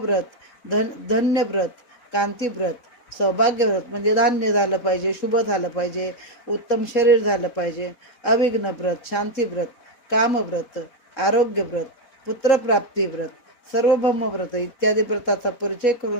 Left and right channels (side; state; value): right; late; 4.1 ms